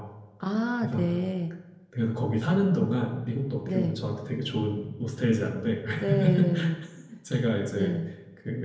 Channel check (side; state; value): both; identical; correlation 1.00